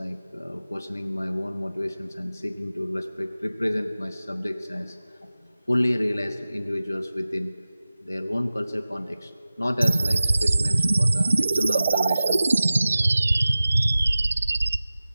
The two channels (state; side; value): inverted; both; correlation -0.96